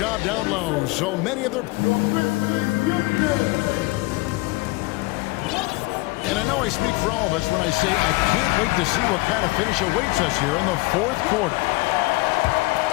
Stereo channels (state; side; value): quieter; right; 23.0 dB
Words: down low. So many of their... And I know I speak for all of us when I say I can't wait to see what kind of finish awaits us here in the fourth quarter.